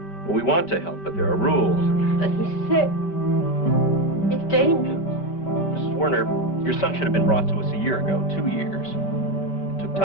Well, we want to help, but there are rules. But he's sick. It's dangerous. Mrs. Werner, your son should have been brought to us a year ago, 2 years. It took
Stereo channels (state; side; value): late; right; 5.2 ms